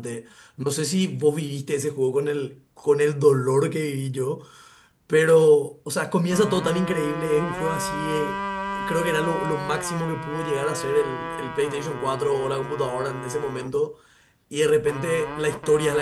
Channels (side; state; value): both; identical; correlation 1.00